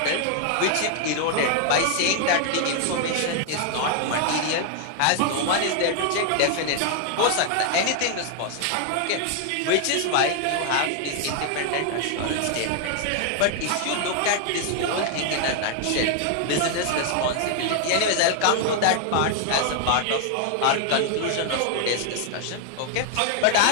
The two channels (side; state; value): both; different; correlation 0.00